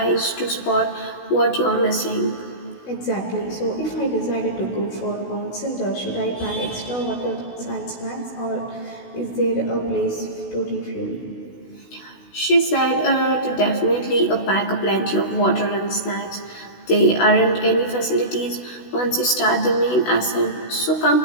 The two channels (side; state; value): right; late; 16 ms